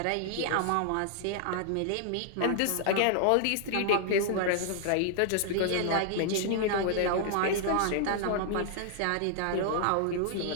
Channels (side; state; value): both; different; correlation -0.01